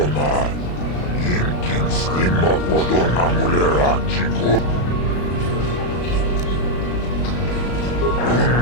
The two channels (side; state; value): right; late; 34 ms